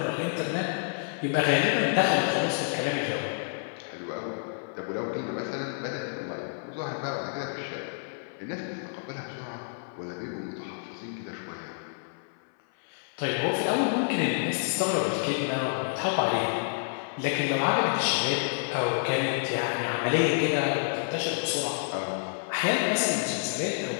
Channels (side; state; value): right; silent; 59 dB below the other